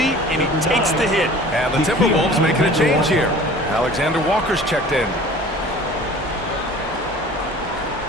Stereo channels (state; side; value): normal; both; correlation 0.45